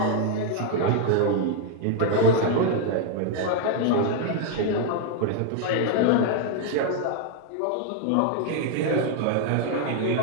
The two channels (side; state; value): both; different; correlation 0.00